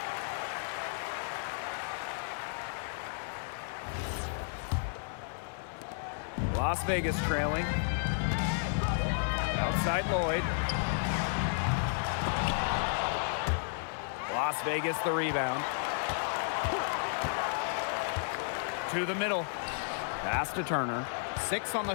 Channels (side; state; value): right; silent; 56 dB below the other